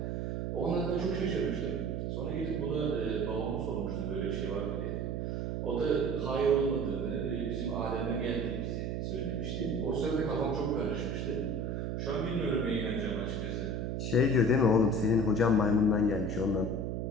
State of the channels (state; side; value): noise; right; hum, 1 dB below the sound